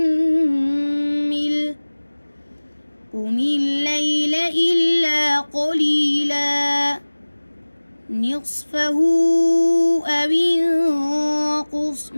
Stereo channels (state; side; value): inverted; both; correlation -1.00